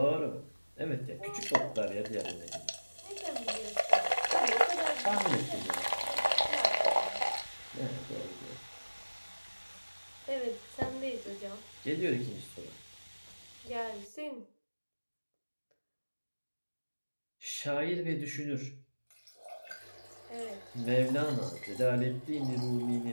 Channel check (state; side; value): inverted; both; correlation -1.00